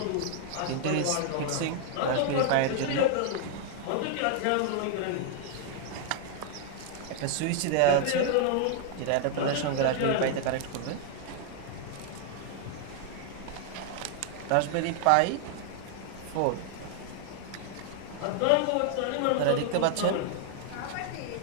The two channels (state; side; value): different; both; correlation 0.00